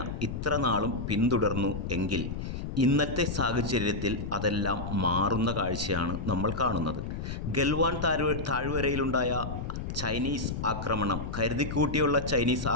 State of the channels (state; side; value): noise; left; rumble, 5 dB below the sound